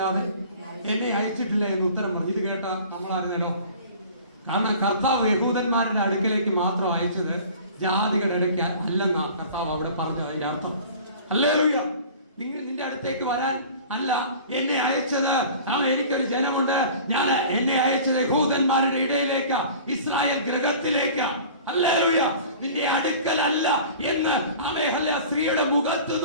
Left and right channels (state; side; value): inverted; both; correlation -0.43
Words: എന്നെ അയച്ചിട്ടില്ല എന്ന് ഉത്തരം പറഞ്ഞു. ഇത് കേട്ട നമ്മളായിരുന്നല്ലോ. കാരണം കർത്താവ് യഹൂദന്മാരുടെ അടുക്കലേക്ക് മാത്രം അയച്ചത് ജാതികളുടെ ഇടയ്ക്ക് അല്ലെന്നാ കർത്താവ് അവിടെ പറഞ്ഞു. അതിന്റെ അർത്ഥം ഹല്ലേലൂയ. നിന്റെ അടുത്തേക്ക് വരാൻ അല്ല എന്നെ അയച്ചത്. എനിക്കൊരു ജനമുണ്ട്. ഞാൻ എന്നെ അയച്ചത് യഹൂദന്മാരുടെ ഇടയിലേക്ക്, ഇസ്രായേൽ ഗൃഹത്തിലേക്ക്. ഹല്ലേലൂയ. നിന്റെ അടുക്കലല്ല എന്ന് ആമേ ഹല്ലേലൂയ സ്ത്രീയുടെ മുഖത്ത്